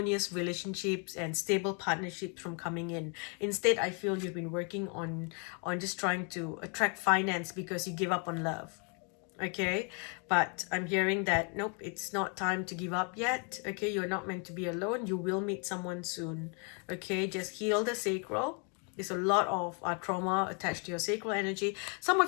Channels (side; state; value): right; quieter; 38.2 dB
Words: relationships and stable partnerships from coming in. Instead, I feel you've been working on just trying to attract finance because you give up on love. Okay, but I'm hearing that nope, it's not time to give up yet. Okay, you're not meant to be alone. You will meet someone soon. Okay, just heal the sacral. There's a lot of trauma attached to your sacral energy. Some